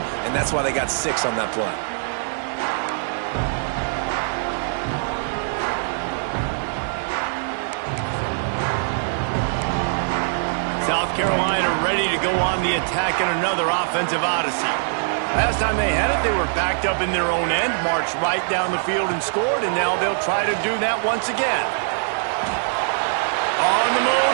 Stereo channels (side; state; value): left; silent; digital silence